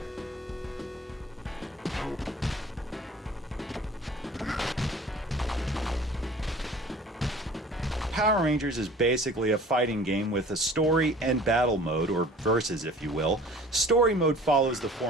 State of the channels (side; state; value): both; normal; correlation 0.47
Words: Power Rangers is basically a fighting game with a story and battle mode, or versus if you will. Story mode follows the